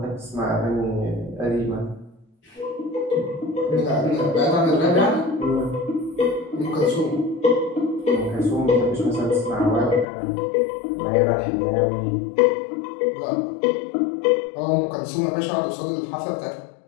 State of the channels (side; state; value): right; drops out; at 10.1 s